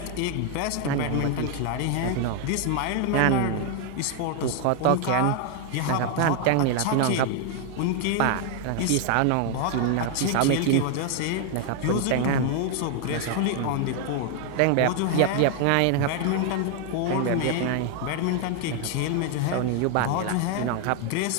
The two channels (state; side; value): different; both; correlation 0.00